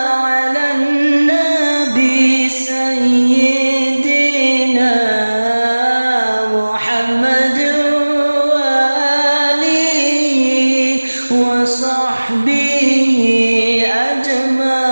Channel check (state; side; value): inverted; both; correlation -1.00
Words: nabi sayyidina Muhammad wa alihi wa sahbihi